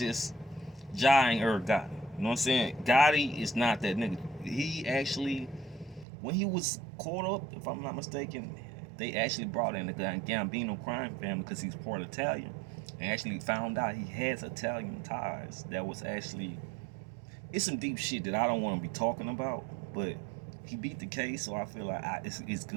Irv Gotti. You know what I'm saying? Gotti is not that nigga. He actually, when he was caught up, if I'm not mistaken, they actually brought in the Gambino crime family because he's part Italian. And actually found out he has Italian ties. That was actually, it's some deep shit that I don't want to be talking about. But he beat the case, so I feel like it's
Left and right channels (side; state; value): left; drops out; at 6.1 s